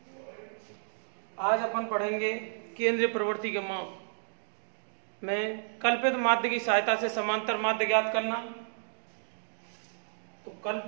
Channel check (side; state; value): left; silent; digital silence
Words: आज अपन पढ़ेंगे केंद्रीय प्रवृत्ति के माप में कल्पित माध्य की सहायता से समांतर माध्य ज्ञात करना। तो